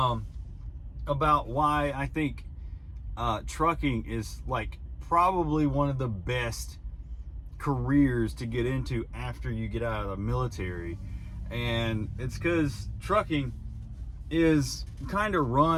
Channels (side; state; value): both; identical; correlation 1.00